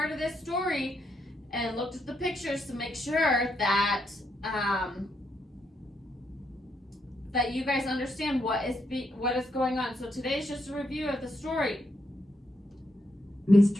of this story and looked at the pictures to make sure that that you guys understand what is going on. So today is just a review of the story.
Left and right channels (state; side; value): normal; both; correlation 0.79